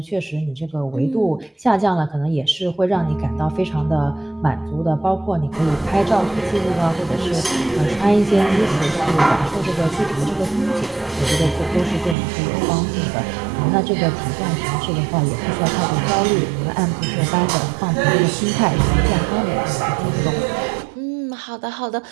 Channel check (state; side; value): drops out; left; at 12.2 s